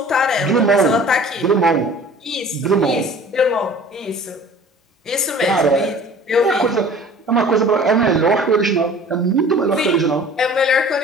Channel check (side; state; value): both; normal; correlation 0.46